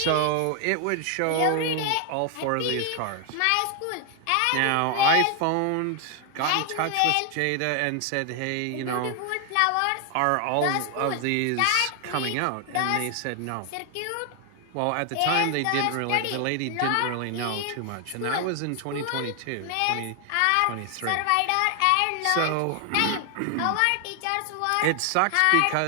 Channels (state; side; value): different; both; correlation 0.00